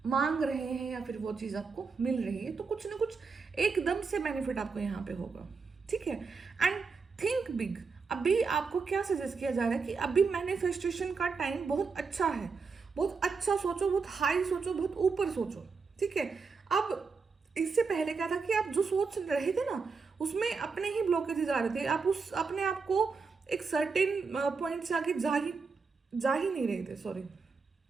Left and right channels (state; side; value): quieter; left; 4.9 dB